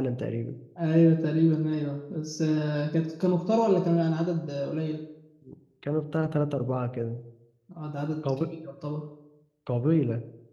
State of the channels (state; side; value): identical; both; correlation 1.00